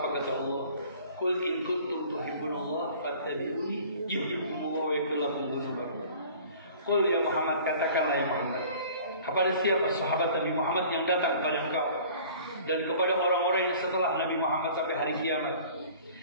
kata Allah? Qul in kuntum tuhibbunallah fattabi'uni yuhibbukumullah wa yaghfir lakum dzunubakum. Qul ya Muhammad, katakanlah ya Muhammad, kepada siapa sahabat Nabi Muhammad yang datang kepada engkau dan kepada orang-orang yang setelah Nabi Muhammad sampai hari kiamat,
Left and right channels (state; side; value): inverted; both; correlation -0.48